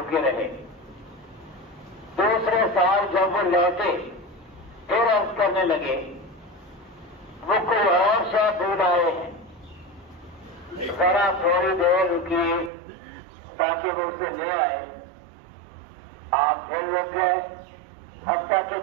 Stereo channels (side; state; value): left; drops out; at 12.7 s